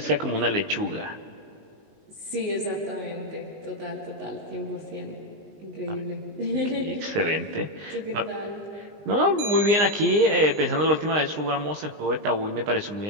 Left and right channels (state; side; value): late; left; 20 ms